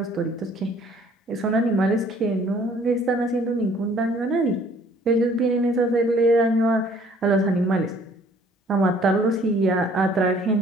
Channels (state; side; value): normal; both; correlation 0.58